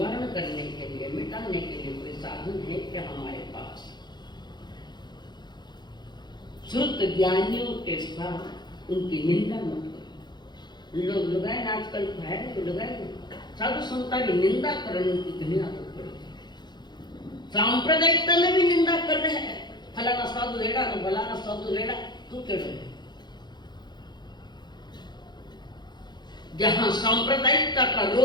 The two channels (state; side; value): late; right; 0.21 ms